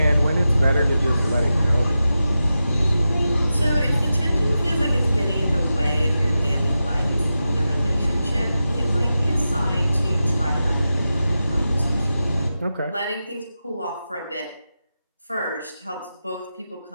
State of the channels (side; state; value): both; inverted; correlation -0.91